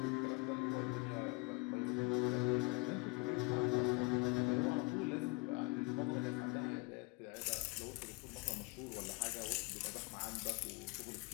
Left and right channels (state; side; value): quieter; right; 27.3 dB